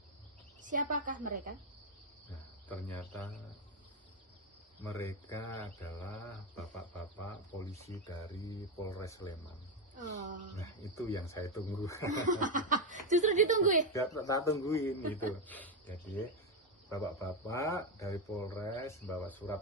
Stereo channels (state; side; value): normal; both; correlation 0.07